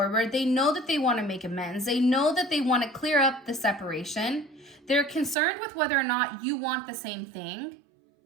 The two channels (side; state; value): left; drops out; at 5.4 s